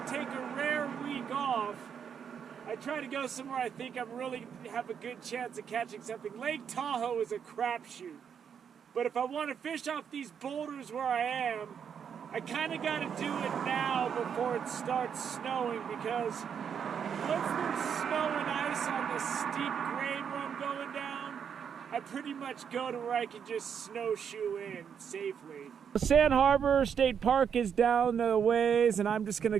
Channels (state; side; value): quieter; left; 7.5 dB